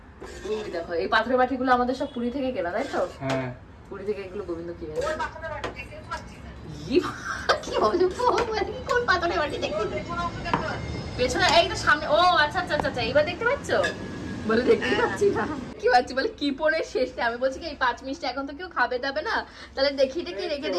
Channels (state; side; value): identical; both; correlation 1.00